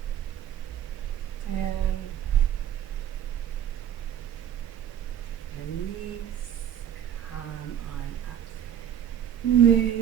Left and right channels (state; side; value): quieter; left; 9.9 dB